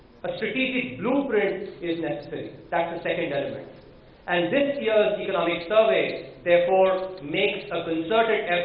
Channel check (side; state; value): both; identical; correlation 1.00